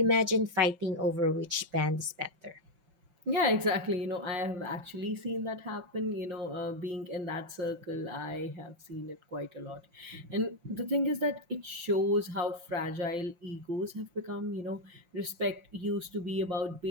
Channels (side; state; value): left; late; 5.8 ms